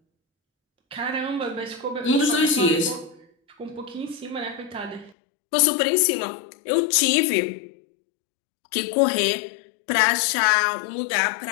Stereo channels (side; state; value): right; drops out; at 5.2 s